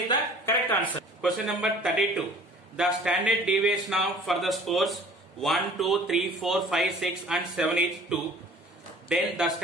the correct answer. Question number 32. The standard deviation of for the scores 1, 2, 3, 4, 5, 6 and 7 is 2. Then the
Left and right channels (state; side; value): normal; both; correlation 0.49